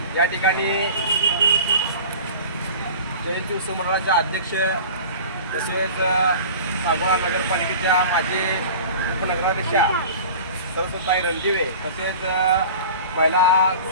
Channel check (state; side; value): inverted; both; correlation -0.39